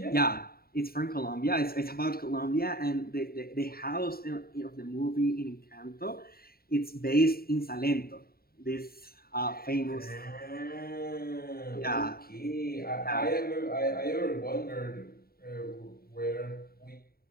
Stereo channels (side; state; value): right; late; 0.44 ms